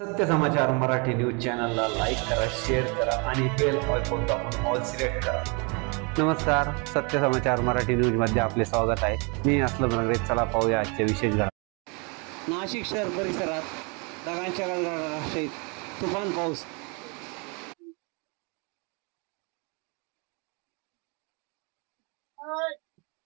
समाचार मराठी न्यूज चॅनलला लाईक करा, शेअर करा आणि बेल आयकॉन दाबून ऑल सिलेक्ट करा। नमस्कार, सत्य समाचार मराठी न्यूज मध्ये आपले स्वागत आहे। मी असलम रंगरे। चला पाहूया आजचे विशेष घडामोडी। नाशिक शहर परिसरात ढगांच्या गडगडाटासहित तुफान पाऊस।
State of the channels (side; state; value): left; quieter; 32.5 dB